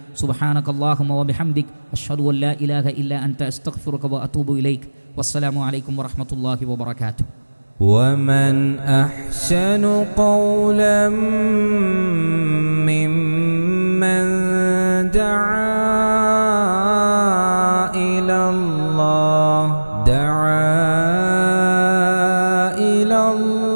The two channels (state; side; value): inverted; both; correlation -1.00